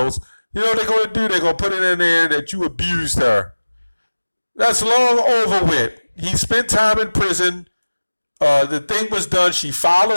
you know what they're going to do? They're going to put it in there that you abused her. That's long over with. He spent time in prison. The thing was done. She filed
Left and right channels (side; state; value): both; inverted; correlation -1.00